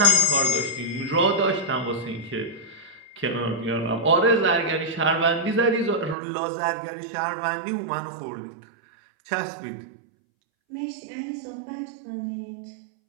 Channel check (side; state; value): left; drops out; at 6.2 s